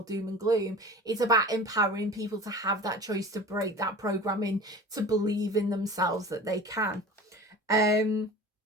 doom and gloom. It's about empowering people to have that choice, to break that programming, to believe in themselves that they can.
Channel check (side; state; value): both; normal; correlation 0.38